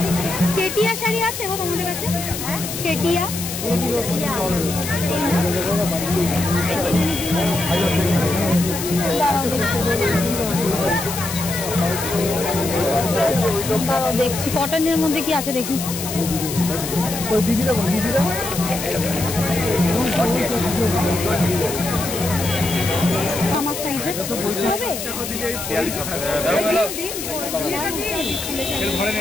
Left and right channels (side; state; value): left; noise; hiss, 6 dB below the sound